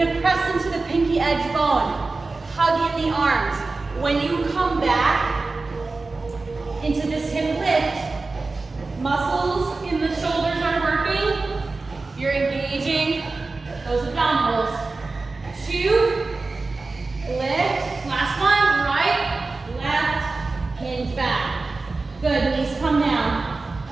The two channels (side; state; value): left; quieter; 3.6 dB